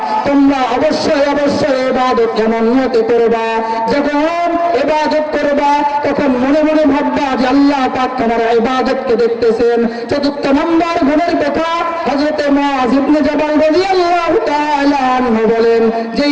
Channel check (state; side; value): identical; both; correlation 1.00